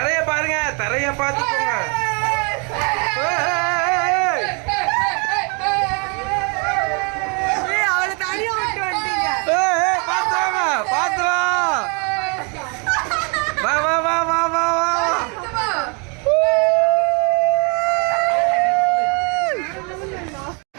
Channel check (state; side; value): quieter; left; 34.8 dB